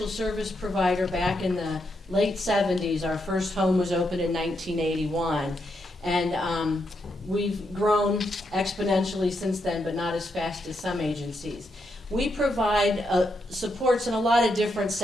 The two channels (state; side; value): normal; both; correlation 0.81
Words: service provider back in the late 70s. Our first home was opened in 1981, and we've grown exponentially since then, but not as fast as some agencies. We provide supports in a lot of different